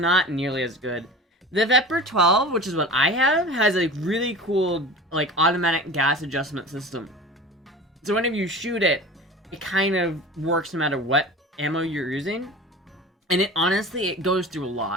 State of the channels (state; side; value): normal; both; correlation 0.36